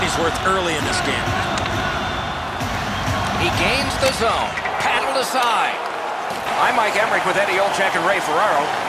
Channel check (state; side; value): identical; both; correlation 1.00